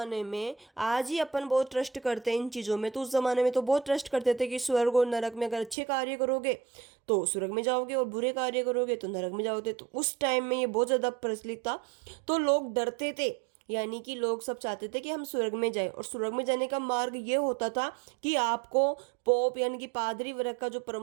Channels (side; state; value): left; drops out; at 5.8 s